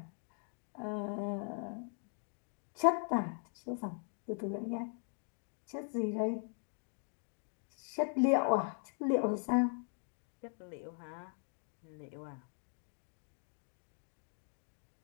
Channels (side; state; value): right; silent; 51 dB below the other